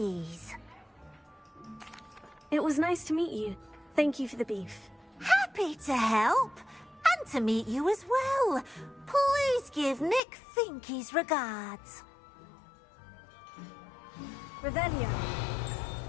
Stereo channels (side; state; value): right; drops out; at 10.2 s